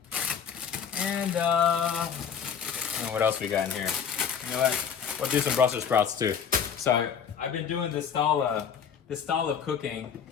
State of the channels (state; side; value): quieter; right; 7.4 dB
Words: And what else we got in here? You know what? We'll do some Brussels sprouts too. So I've been doing this style of cooking